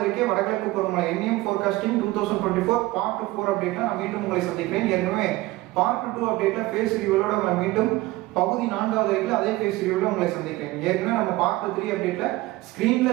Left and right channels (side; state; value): left; quieter; 18.8 dB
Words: அறிக்கை வடகிழக்கு பருவமழை என்எம் ஃபோர்காஸ்டிங் 2024 பார்ட் 4 அப்டேட்ல நான் மீண்டும் உங்களை சந்திக்கிறேன். ஏற்கனவே பார்ட் 2 அப்டேட்ல ஃபேஸ் ரிவ்யூவோட நம்ம மீண்டும் பகுதி 4வது அறிக்கையில் அதே ஃபேஸ் ரிவ்யூல உங்களை சந்திக்கிறேன். ஏற்கனவே நம்ம பார்ட் 3 அப்டேட்ல